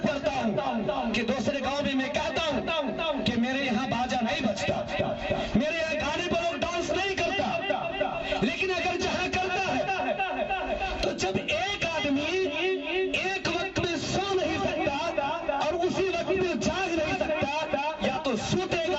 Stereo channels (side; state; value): both; identical; correlation 1.00